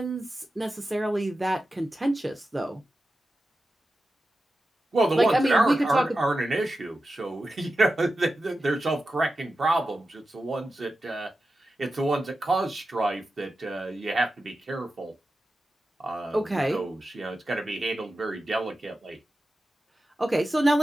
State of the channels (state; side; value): normal; both; correlation 0.92